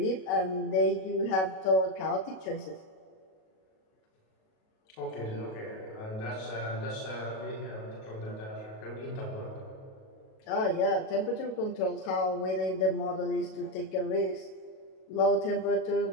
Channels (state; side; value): late; right; 37 ms